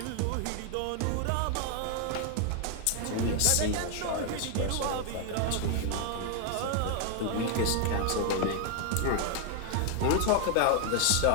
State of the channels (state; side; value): different; both; correlation 0.00